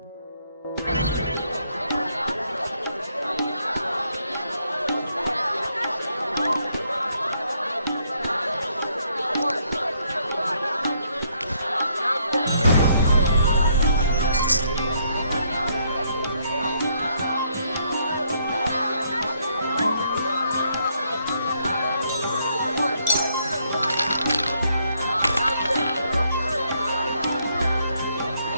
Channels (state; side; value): inverted; both; correlation -0.72